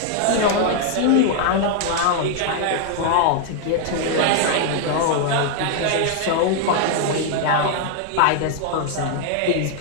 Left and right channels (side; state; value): both; different; correlation 0.00